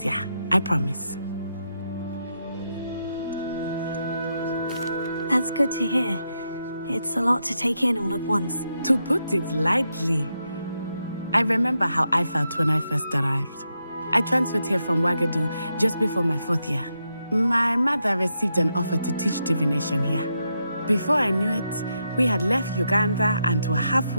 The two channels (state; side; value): inverted; both; correlation -0.83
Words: I promise. That's good to hear. It's a lot to take in all at once. To put it lightly, I remember how I felt when I first arrived. I transferred here from Ouagadougou just before my 4th year. My mother received an offer to teach divination here. Before I knew it, we had left Uganda and were